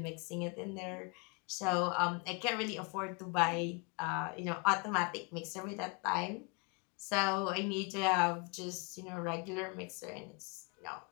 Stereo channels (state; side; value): quieter; right; 31.7 dB